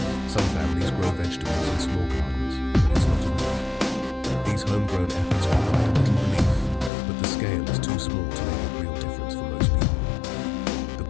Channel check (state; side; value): drops out; right; at 6.9 s